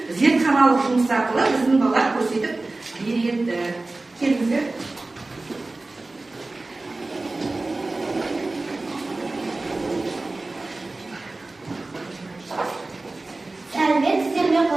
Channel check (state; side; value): quieter; left; 3.2 dB